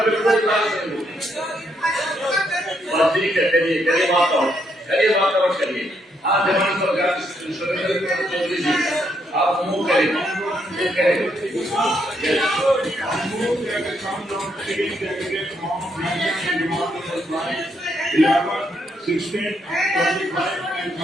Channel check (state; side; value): normal; both; correlation 0.75